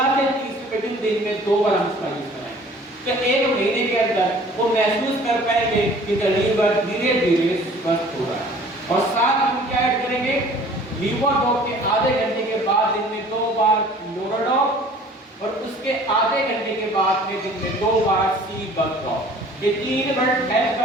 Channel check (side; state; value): both; normal; correlation 0.50